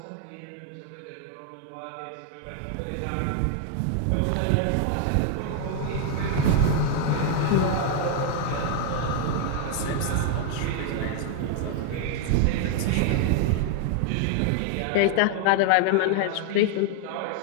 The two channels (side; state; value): both; different; correlation 0.00